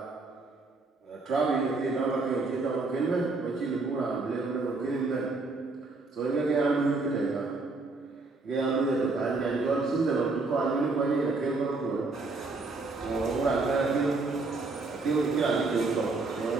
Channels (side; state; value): left; quieter; 3.6 dB